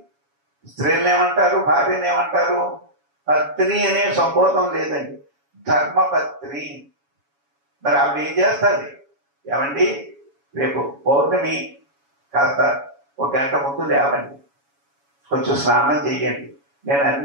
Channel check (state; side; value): late; left; 7.1 ms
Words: స్త్రీలను ఏమంటారు? భార్యను ఏమంటారు? పత్ని అనే సంబోధం లేదండి, ధర్మపత్ని. మరి ఆవిడ ఏం చేస్తుంది? ఏమండి రేపు పౌర్ణమి, కాస్త 1 గంట ముందు లేవండి, కొంచెం స్నానం చెయ్యండి, నేను